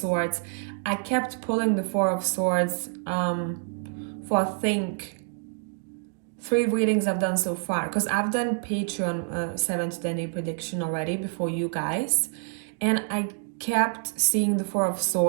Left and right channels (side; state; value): left; silent; 60 dB below the other